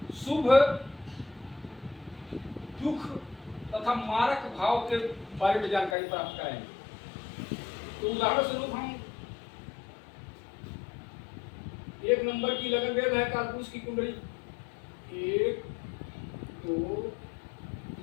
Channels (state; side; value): drops out; right; at 6.0 s